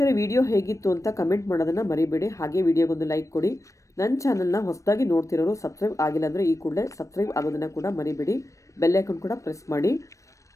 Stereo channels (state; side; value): late; right; 0.15 ms